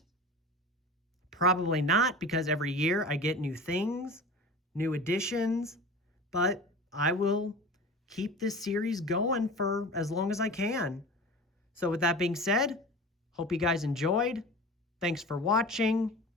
Probably not, because every year I get new things, new additions, but I will keep this series going for as long as I can. So with that being said, hope you guys enjoyed. Thanks for watching,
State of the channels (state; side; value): normal; both; correlation 0.35